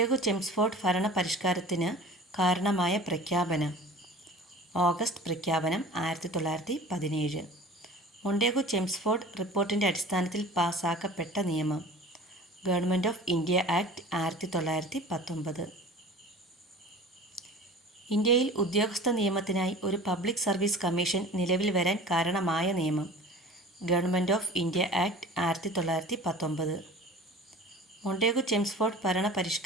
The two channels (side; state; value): both; normal; correlation 0.41